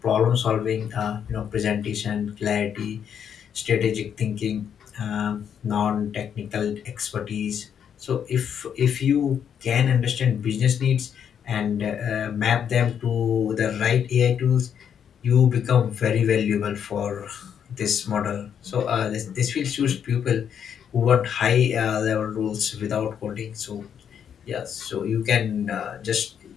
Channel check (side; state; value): right; quieter; 8.3 dB